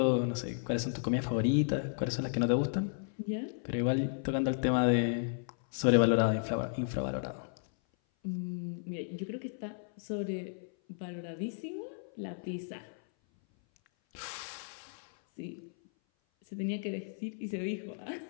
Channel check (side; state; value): right; silent; 55 dB below the other